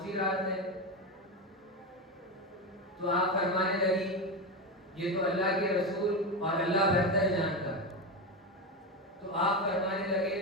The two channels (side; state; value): both; normal; correlation 0.15